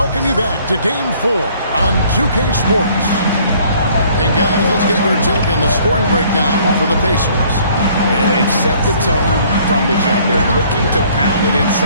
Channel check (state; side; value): inverted; both; correlation -0.59